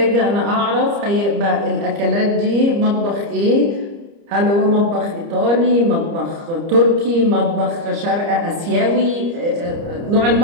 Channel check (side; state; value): left; late; 30 ms